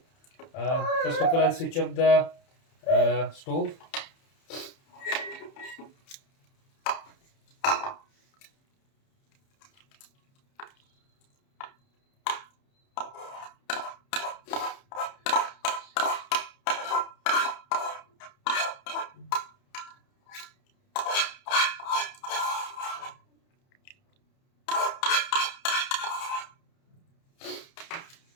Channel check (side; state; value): right; late; 30 ms